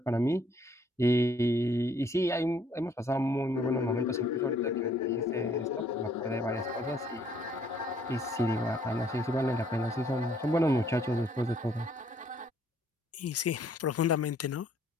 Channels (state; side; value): normal; both; correlation 0.64